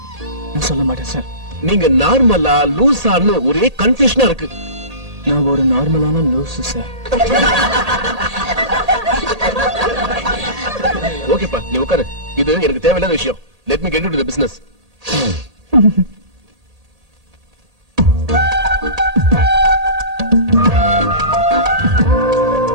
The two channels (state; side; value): late; left; 1.8 ms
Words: நான் சொல்ல மாட்டேன் சார். நீங்க நார்மலா லூசான்னு ஒரே கன்ஃபியூஷனா இருக்கு. நான் ஒரு நார்மலான லூசு சார். ஓகேப்பா, நீ உட்காரு. இது எனக்கு தேவையில்லாத விஷயம். Let me get into the business.